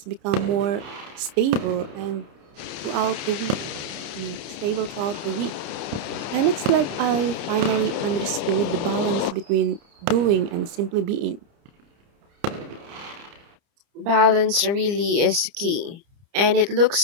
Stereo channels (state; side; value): late; left; 30 ms